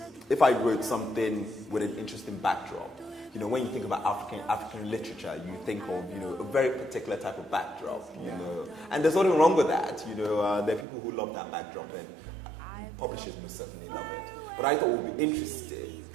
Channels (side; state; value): left; drops out; at 10.9 s